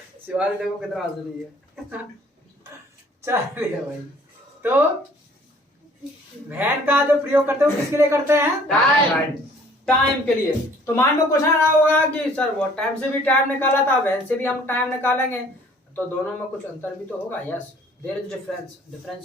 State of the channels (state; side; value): normal; both; correlation 0.56